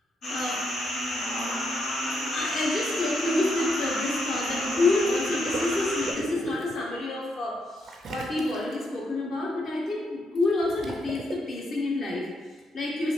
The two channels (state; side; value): normal; both; correlation 0.78